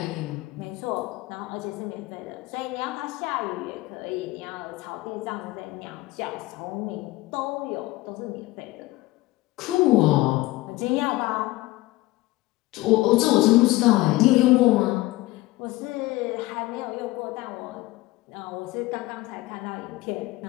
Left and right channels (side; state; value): right; quieter; 18.9 dB